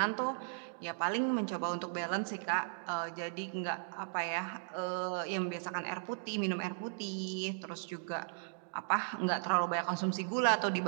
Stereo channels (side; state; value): left; silent; digital silence